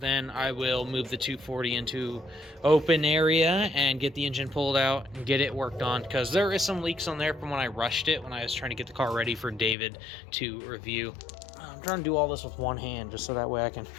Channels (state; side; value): drops out; right; at 9.8 s